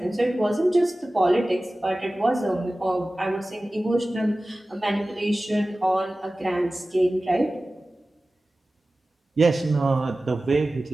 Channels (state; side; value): normal; both; correlation 0.96